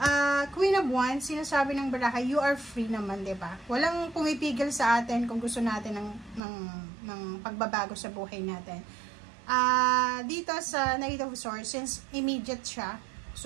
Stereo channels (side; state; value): left; drops out; at 6.4 s